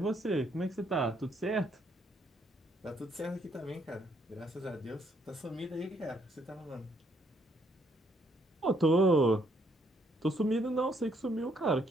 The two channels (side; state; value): both; normal; correlation 0.70